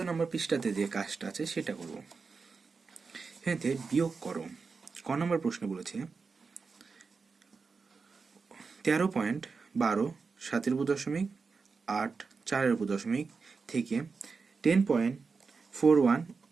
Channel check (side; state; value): left; quieter; 4.8 dB